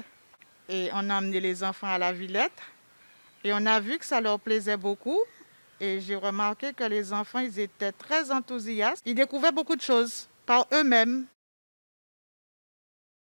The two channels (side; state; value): both; inverted; correlation -1.00